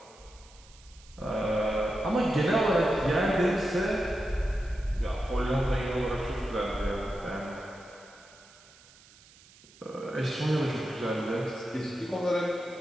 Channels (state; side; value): noise; right; hiss, 25 dB below the sound